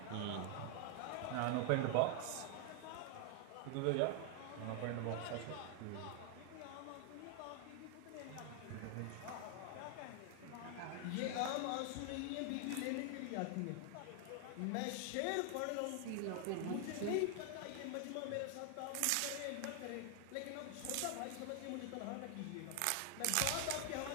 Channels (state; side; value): different; both; correlation 0.00